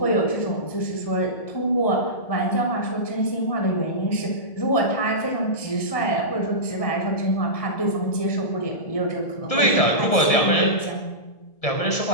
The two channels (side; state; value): right; late; 1.7 ms